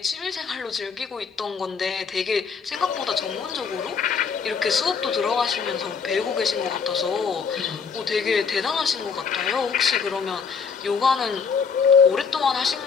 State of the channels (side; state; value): right; quieter; 5.8 dB